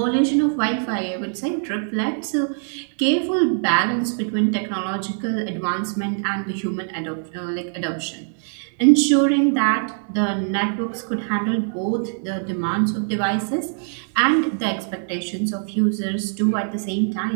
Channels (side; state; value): left; silent; digital silence